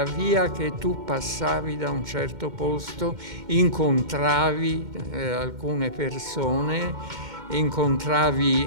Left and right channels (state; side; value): late; left; 2.1 ms